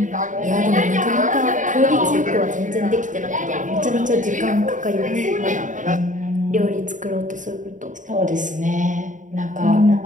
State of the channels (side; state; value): left; late; 0.37 ms